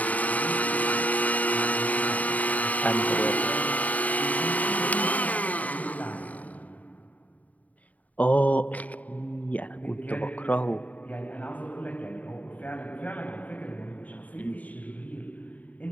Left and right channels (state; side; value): late; right; 0.072 ms